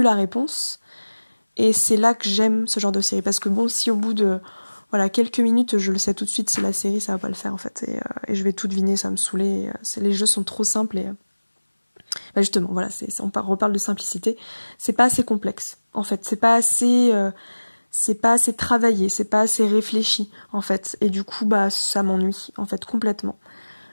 la réponse. Et c'est là que j'aime ce genre de série parce que si au bout de quelques minutes je le sais tout de suite si la série ça va pas le faire en fait et je vais tout deviner, ça va me saouler. Les jeux sont trop simples et justement voilà, on reparle de simplicité. C'est pas assez complexe en fait, c'est pas assez travaillé, c'est pas assez réfléchi en fait et du coup ça m'ennuie en fait complètement.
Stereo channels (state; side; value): inverted; both; correlation -1.00